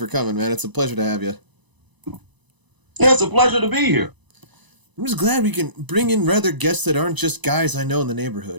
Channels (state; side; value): late; left; 1.0 ms